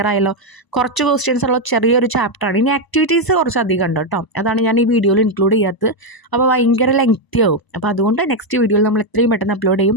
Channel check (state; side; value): late; right; 1.0 ms